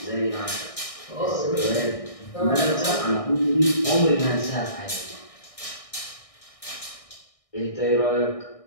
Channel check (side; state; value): right; late; 1.6 ms